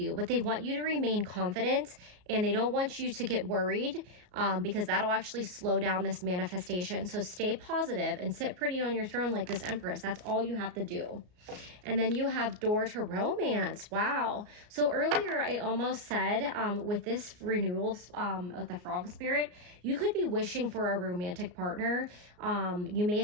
But they want you to remain confident, and they don't want you to get worried because that'll actually slow down this manifestation. So stay positive and sit pretty on your throne like this Empress. That's all you have to do. And then you have door to romance. Wow. So earlier I almost said with this renewal of the Frog Spirit, you could be wishing for a romantic partner. You may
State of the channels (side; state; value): left; late; 34 ms